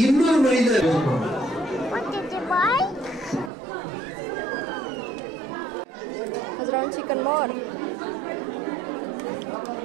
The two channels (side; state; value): left; drops out; at 3.5 s